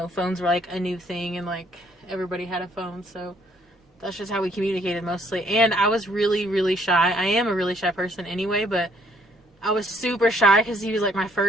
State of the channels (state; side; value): normal; both; correlation 0.65